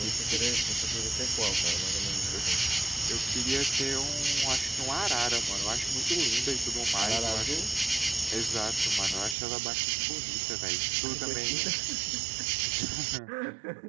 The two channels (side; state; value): left; drops out; at 9.3 s